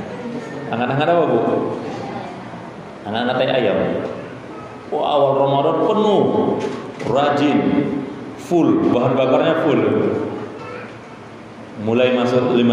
Hangat-hangat apa, Bu? Hangat-hangat tai ayam. Wah, awal Ramadan penuh, rajin, full, bahan bakarnya full. Mulai masuk 5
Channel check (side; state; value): both; identical; correlation 1.00